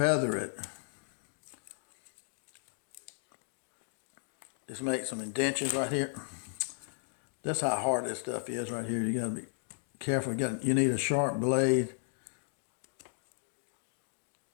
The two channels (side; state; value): right; silent; digital silence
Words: it. Just make some indentions right here. That's how hard this stuff is right here. You got to be careful. You need a sharp blade.